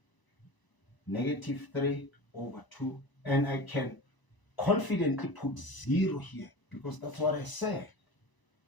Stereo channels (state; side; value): late; right; 1.0 ms